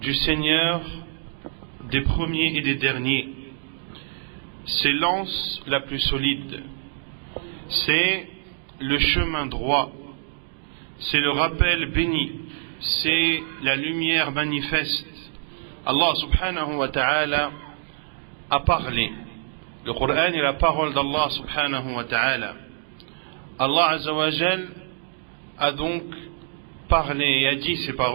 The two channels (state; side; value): silent; left; digital silence